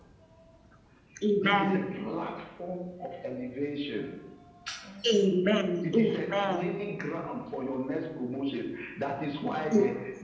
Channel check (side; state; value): both; identical; correlation 1.00